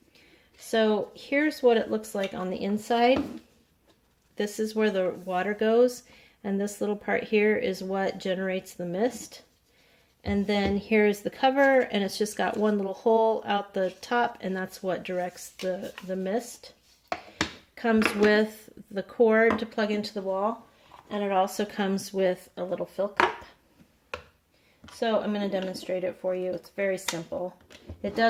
So here's what it looks like on the inside. This is where the water goes, and this little part here is what generates the mist. And then here's the cover, and it's just got one little hole out the top, and that's what directs the mist. Comes with the cord to plug into the wall, and it also comes with a little fill cup. So I'm going to demonstrate it for you. It's very simple. It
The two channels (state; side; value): identical; both; correlation 1.00